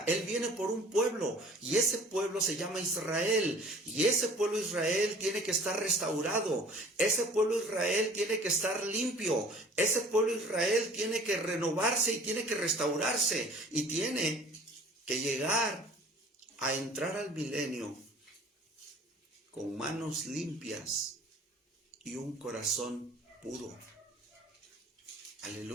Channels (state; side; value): normal; both; correlation 0.49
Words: Él viene por un pueblo, y ese pueblo se llama Israel, y ese pueblo Israel tiene que estar restaurado, ese pueblo Israel tiene que estar limpio, ese pueblo Israel tiene que renovarse y tiene que restaurarse, y tiene que llegar a entrar al milenio con manos limpias y un corazón puro.